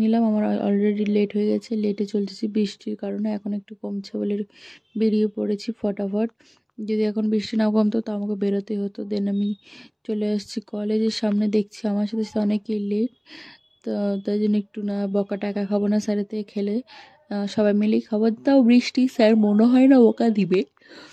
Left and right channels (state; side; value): identical; both; correlation 1.00